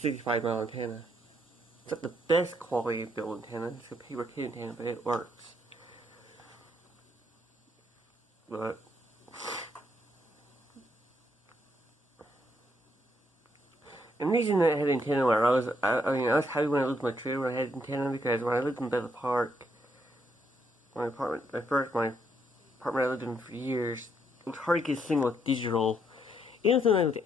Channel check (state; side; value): normal; both; correlation 0.74